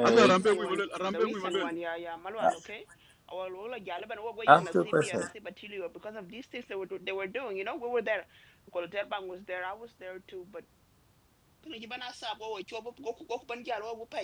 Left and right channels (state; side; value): identical; both; correlation 1.00